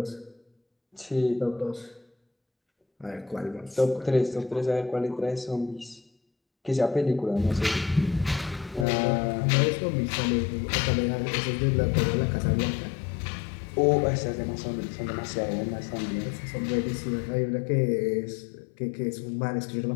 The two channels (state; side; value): drops out; right; at 8.8 s